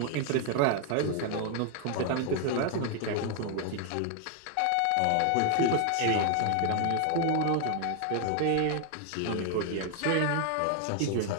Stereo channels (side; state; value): both; different; correlation 0.00